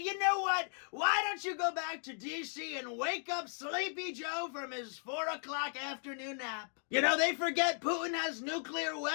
know what? Why don't you go back to D.C. and wake up Sleepy Joe from his 4 o'clock afternoon nap? They forget Putin has nuclear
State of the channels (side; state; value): right; silent; 54 dB below the other